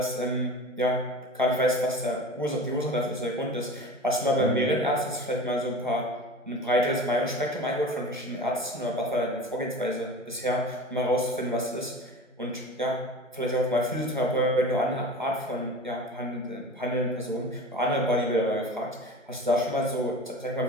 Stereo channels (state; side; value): normal; both; correlation 0.36